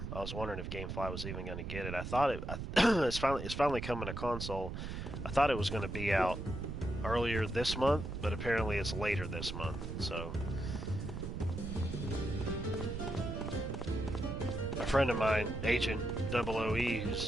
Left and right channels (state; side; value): noise; right; rumble, 6 dB below the sound